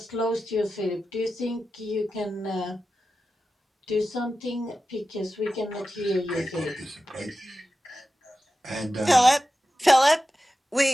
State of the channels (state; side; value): normal; both; correlation 0.93